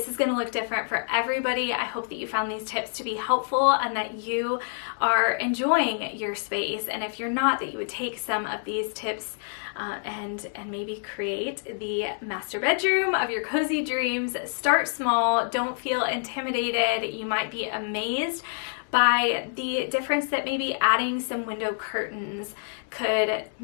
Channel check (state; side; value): silent; right; 60 dB below the other